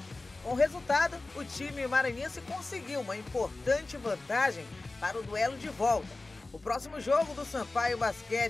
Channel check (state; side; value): quieter; right; 3.2 dB